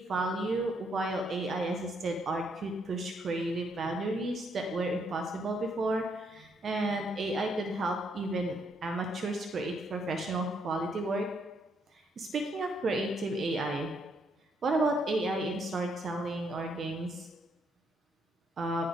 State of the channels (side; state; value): both; normal; correlation 0.73